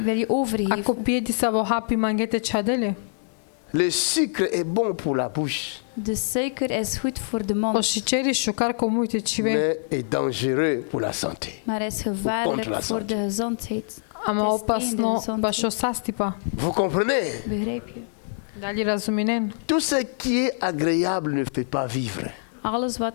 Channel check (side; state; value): right; silent; 57 dB below the other